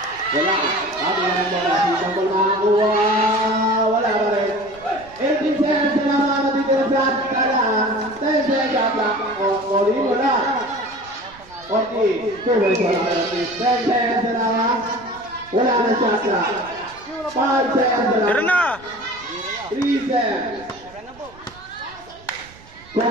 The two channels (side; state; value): right; noise; rumble, 24 dB below the sound